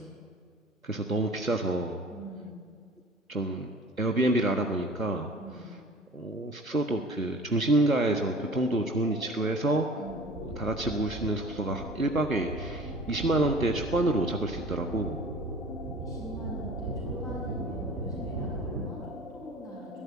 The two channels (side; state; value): both; normal; correlation 0.44